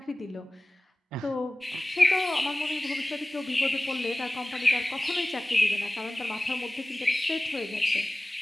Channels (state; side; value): normal; both; correlation 0.98